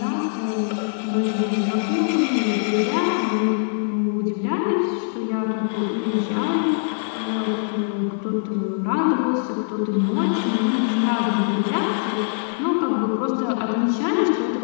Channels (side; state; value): right; silent; digital silence